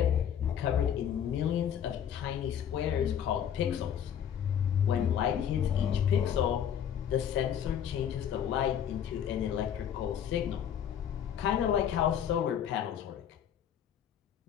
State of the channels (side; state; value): right; quieter; 9.1 dB